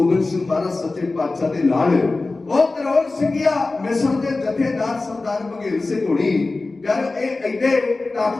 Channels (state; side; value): quieter; right; 3.4 dB